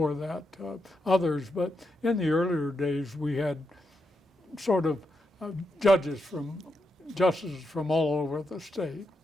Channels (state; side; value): normal; both; correlation 0.84